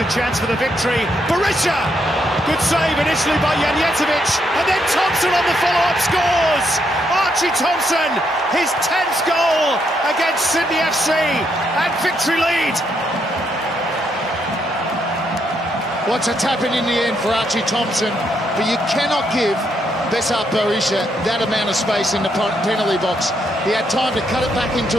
chance for the victory. Berisha! Good save initially by Janjetovic, and then Thompson on the follow-up scores! Archie Thompson, his 10th goal against Sydney FC, and victory lead. What's a tap-in the end for Archie Thompson, but you cannot give Besart Berisha that amount of space in the penalty box. He had time to cut it back onto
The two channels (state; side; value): normal; both; correlation 0.76